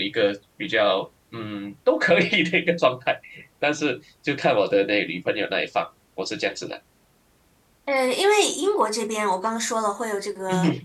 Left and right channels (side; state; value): both; identical; correlation 1.00